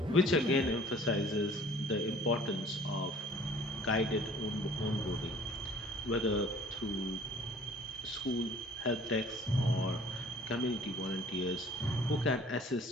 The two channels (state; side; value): normal; both; correlation 0.51